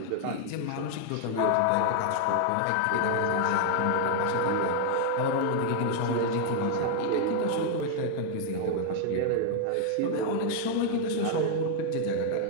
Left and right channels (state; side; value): different; both; correlation 0.00